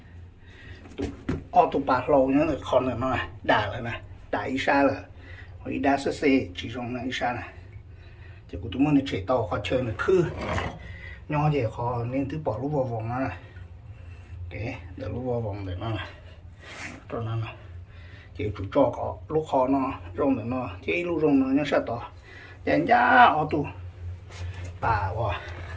ô tô bạc lâu nhớ là con là nó đà rồi nè đà ít xa rồi hồi đa sơ xe chỉ dùng là ít xa này thì của tụi mình chạy tàu khó chơi là khư nhỏ thì khó nên thứ bỏ lúc vào vòng nó này để lúc vào vòng để nó này cho nó này chỉ chủ cho có lúc khó nó rong để nó chỉ lúc rong nó nhớ sao to dành ra ô tô bà quá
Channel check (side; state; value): both; identical; correlation 1.00